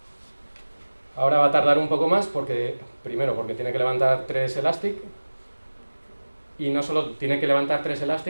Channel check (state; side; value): inverted; both; correlation -1.00